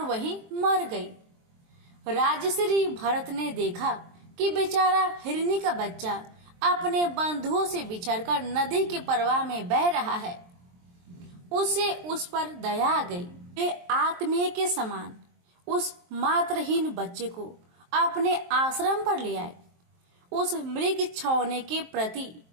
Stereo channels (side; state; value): left; late; 23 ms